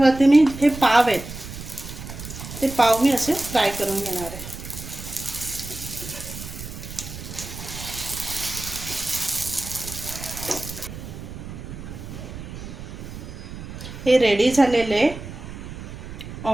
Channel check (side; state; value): right; noise; rumble, 11 dB below the sound